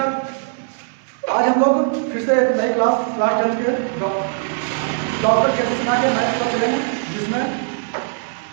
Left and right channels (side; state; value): left; silent; 63 dB below the other